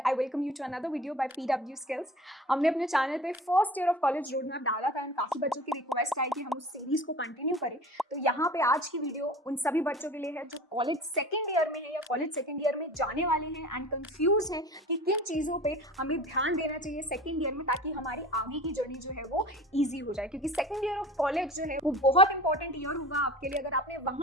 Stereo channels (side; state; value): both; normal; correlation 0.39